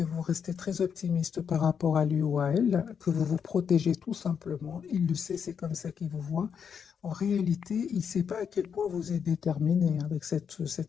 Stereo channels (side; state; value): right; quieter; 7.1 dB